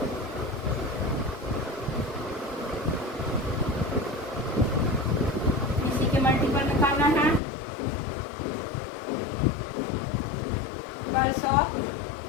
इसी के मल्टीपल निकालना है। 12 ऑफ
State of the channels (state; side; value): drops out; right; at 7.4 s